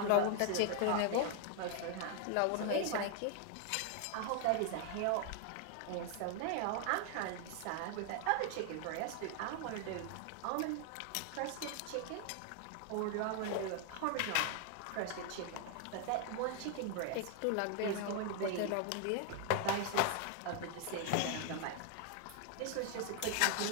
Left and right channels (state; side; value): different; both; correlation 0.00